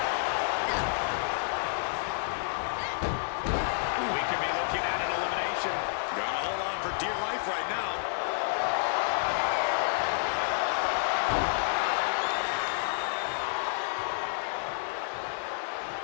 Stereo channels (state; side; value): silent; right; digital silence